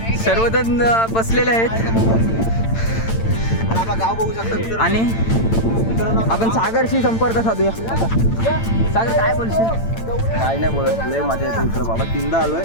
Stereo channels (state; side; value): late; right; 8.9 ms